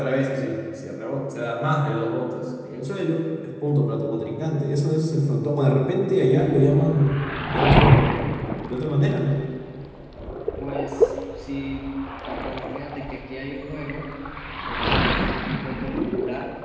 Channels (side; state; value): both; identical; correlation 1.00